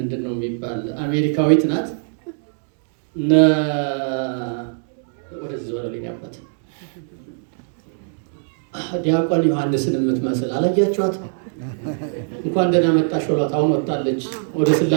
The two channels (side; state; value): left; silent; 65 dB below the other